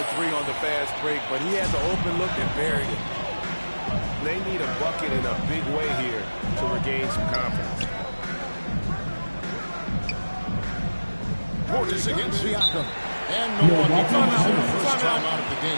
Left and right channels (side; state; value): both; inverted; correlation -1.00